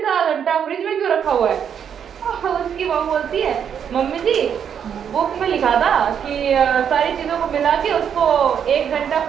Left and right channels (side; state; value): left; quieter; 8.1 dB